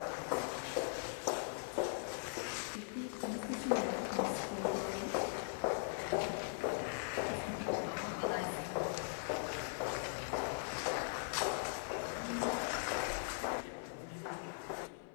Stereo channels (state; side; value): silent; right; 51 dB below the other